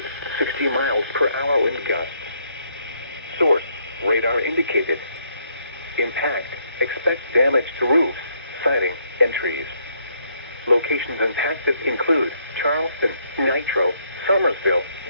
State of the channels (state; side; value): inverted; both; correlation -0.72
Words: 60 miles per hour wind gusts. Source, radar indicated. Impact, expect damage to roofs, siding, and trees. Locations impacted include Charleston, Nitro, Somersville,